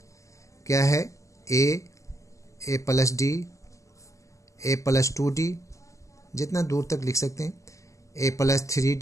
क्या है, a plus d, a plus 2d, जितना दूर तक लिख सकते हैं, a plus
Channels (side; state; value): right; late; 0.16 ms